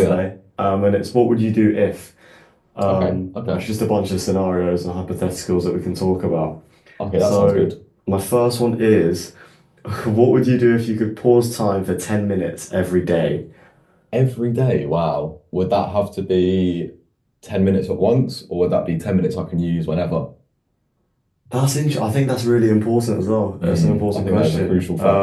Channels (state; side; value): identical; both; correlation 1.00